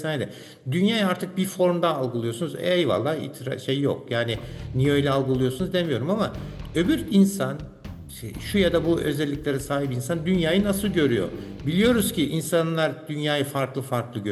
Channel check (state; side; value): identical; both; correlation 1.00